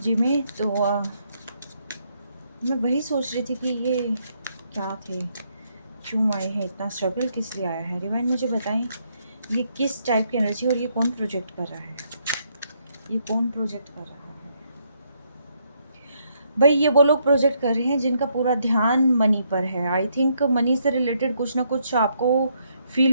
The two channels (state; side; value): inverted; both; correlation -0.74